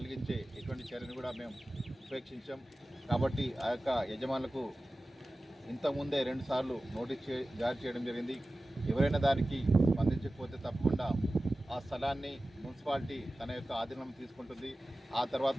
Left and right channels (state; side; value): normal; both; correlation 0.96